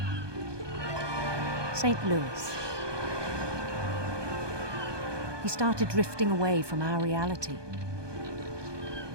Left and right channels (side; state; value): left; late; 1.2 ms